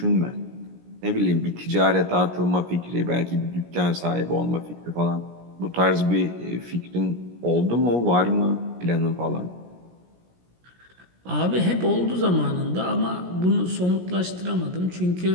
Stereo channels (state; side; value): late; left; 17 ms